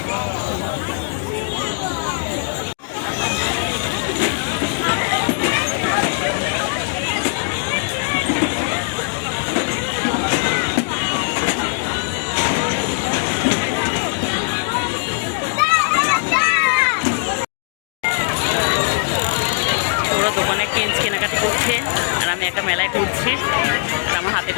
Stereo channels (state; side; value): silent; right; 56 dB below the other